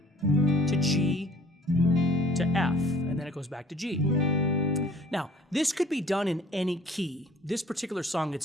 G to F, and then it goes back to G. Now, this could be done in any key. This particular song,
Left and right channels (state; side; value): normal; both; correlation 0.52